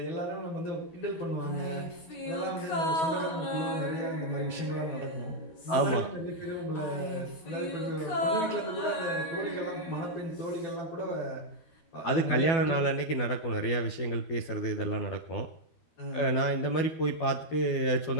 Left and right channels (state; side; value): late; right; 12 ms